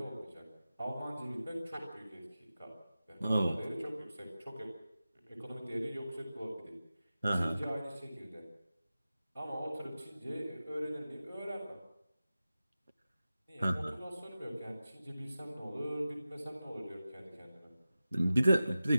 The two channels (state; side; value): inverted; both; correlation -0.94